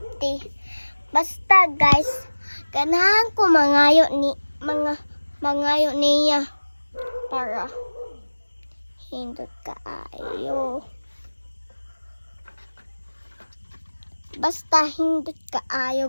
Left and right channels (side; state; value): both; inverted; correlation -1.00